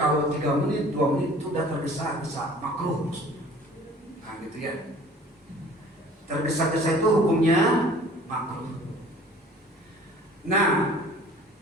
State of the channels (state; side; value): normal; both; correlation 0.49